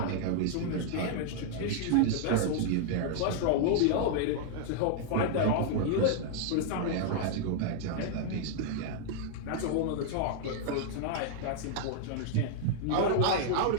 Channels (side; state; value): both; different; correlation -0.01